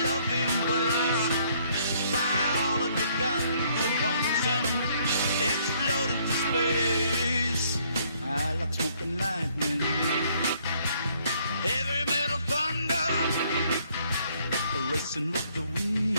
loving embrace. Fire all of your guns at once and explode into space. I like smoking lightning, heavy metal thunder, racing with the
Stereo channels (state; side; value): inverted; both; correlation -0.65